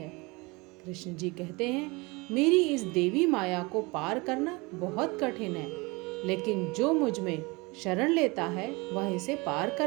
कृष्ण जी कहते हैं, मेरी इस देवी माया को पार करना बहुत कठिन है, लेकिन जो मुझ में शरण लेता है वह इसे पार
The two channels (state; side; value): quieter; left; 25.7 dB